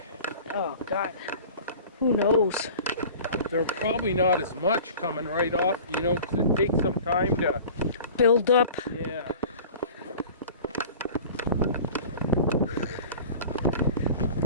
Oh God, who knows? They're probably not as much coming right off, you know, 'cause it takes some time to, Build up. yeah.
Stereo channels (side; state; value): both; inverted; correlation -0.41